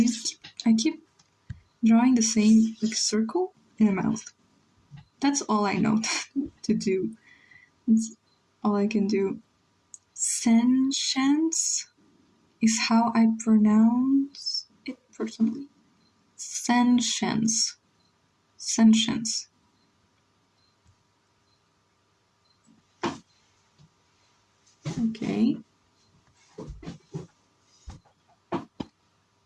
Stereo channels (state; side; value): identical; both; correlation 1.00